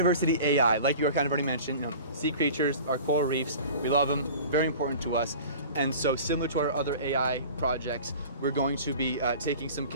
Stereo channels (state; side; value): inverted; both; correlation -0.40